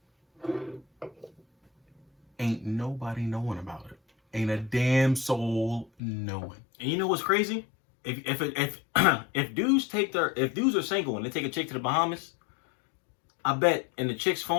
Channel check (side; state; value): right; drops out; at 5.9 s